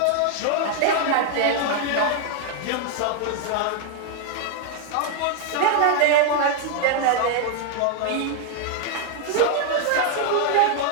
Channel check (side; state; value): both; different; correlation 0.00